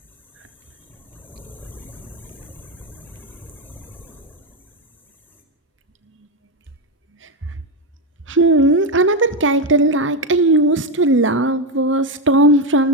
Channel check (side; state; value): both; normal; correlation 0.08